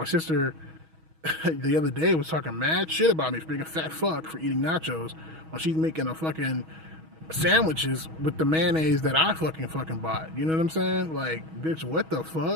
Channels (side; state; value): left; late; 6.2 ms